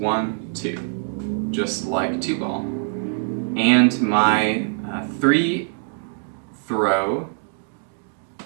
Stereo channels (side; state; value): left; silent; 60 dB below the other